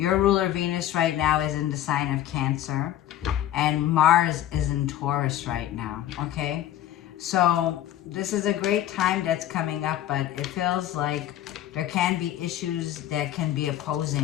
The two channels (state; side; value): quieter; right; 12.4 dB